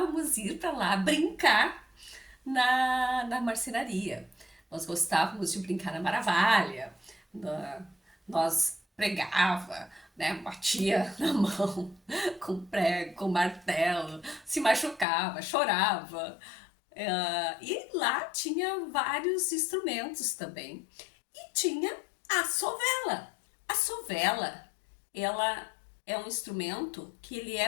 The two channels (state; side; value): drops out; right; at 15.1 s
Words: ir para lá brincar na marcenaria. Nós gostávamos de brincar na Maravalha, nós pregava, né, batia na mão com prego, com martelo, se machucava, chorava. E lá tinha vários instrumentos também. E tinha a sovela. A sovela, ela é um instrumento que ele é